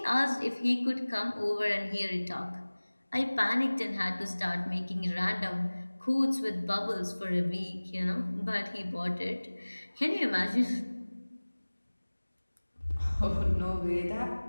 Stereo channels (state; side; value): inverted; both; correlation -1.00